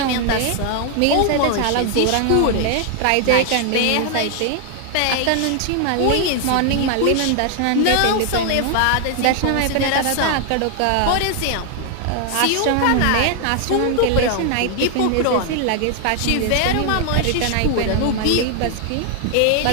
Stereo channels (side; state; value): both; different; correlation 0.00